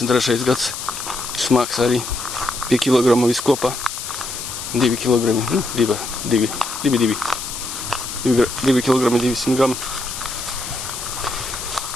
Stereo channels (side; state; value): left; noise; hiss, 7 dB below the sound